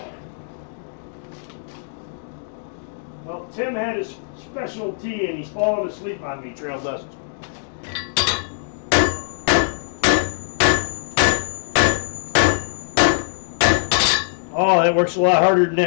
Well, Tim had his special tea and he's fallen asleep on me, Trail Dust. Oh, that works a lot harder than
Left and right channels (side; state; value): right; silent; digital silence